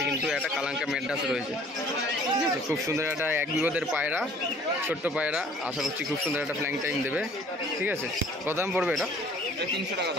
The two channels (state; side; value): normal; both; correlation 0.53